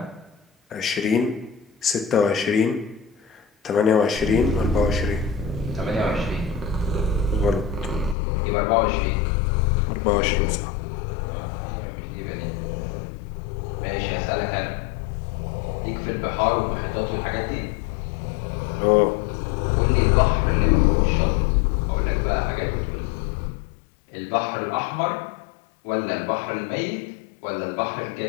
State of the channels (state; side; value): drops out; right; at 8.2 s